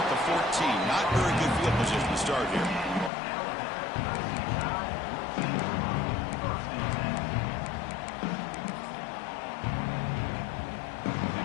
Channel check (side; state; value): right; drops out; at 3.1 s